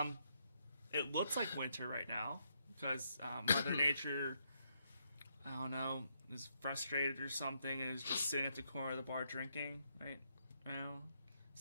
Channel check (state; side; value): inverted; both; correlation -0.76